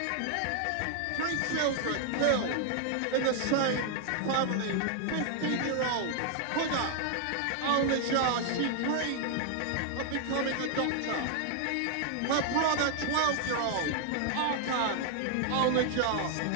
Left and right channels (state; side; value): different; both; correlation 0.00